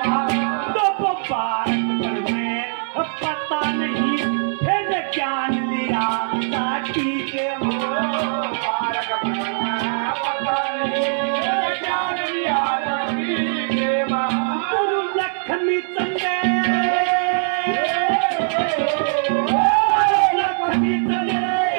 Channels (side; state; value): left; silent; 65 dB below the other